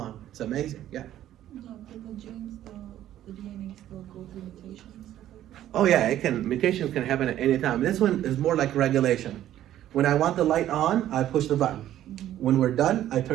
It's amazing, yeah. No, but the genes, the DNA still go through mutations and stuff like that? Oh yeah, mutations can happen at any time. This one is more like regulation. When I want the light on, I push the button. When we're done, I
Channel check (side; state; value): left; quieter; 12.4 dB